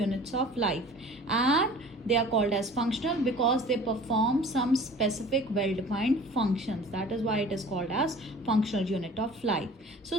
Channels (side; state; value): both; normal; correlation 0.45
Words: of life, and they are called as functional because they perform some specific well-defined functions. That is why it is called as functional unit of life. So